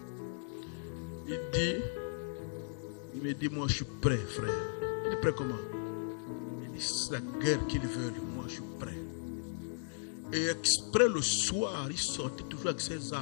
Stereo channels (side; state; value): right; silent; digital silence